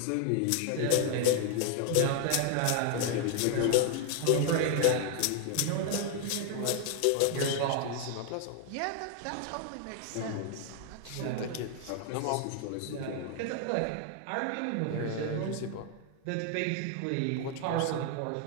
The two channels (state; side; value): different; both; correlation 0.00